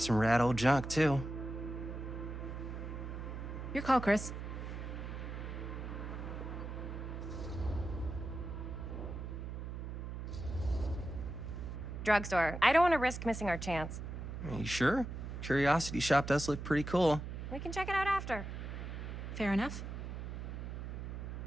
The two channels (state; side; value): noise; right; hum, 6 dB below the sound